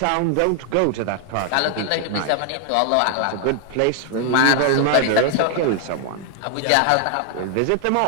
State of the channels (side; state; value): both; different; correlation 0.00